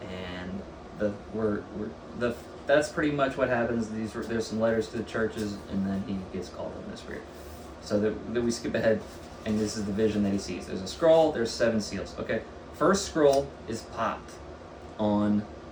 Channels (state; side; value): identical; both; correlation 1.00